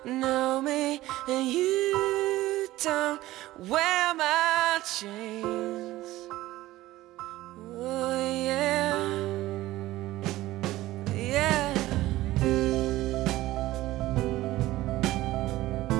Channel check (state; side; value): quieter; left; 16.6 dB